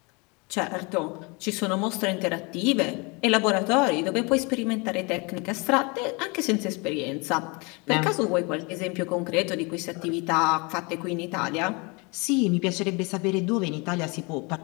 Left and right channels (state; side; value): quieter; right; 29.2 dB